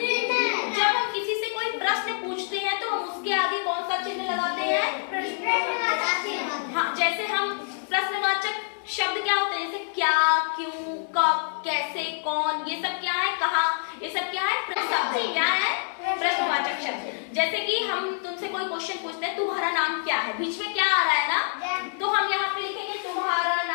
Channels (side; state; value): right; silent; digital silence